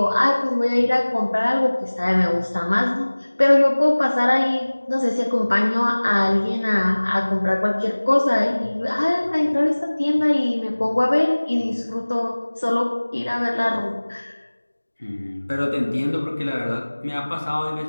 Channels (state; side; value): inverted; both; correlation -1.00